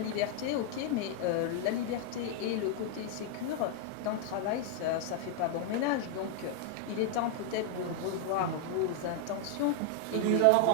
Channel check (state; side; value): different; both; correlation 0.00